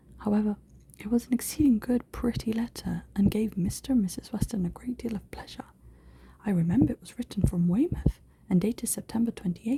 However, it was an exceeding good, pretty letter, and gave Mr. and Mrs. Weston a great deal of pleasure. I remember it was written from Weymouth, and dated September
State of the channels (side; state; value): both; identical; correlation 1.00